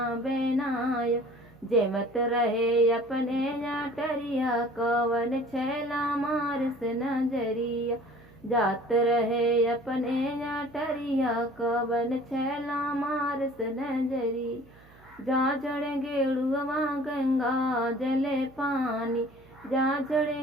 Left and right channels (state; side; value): noise; right; hum, 26 dB below the sound